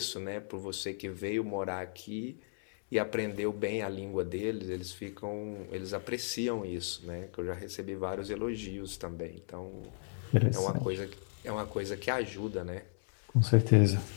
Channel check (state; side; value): silent; right; digital silence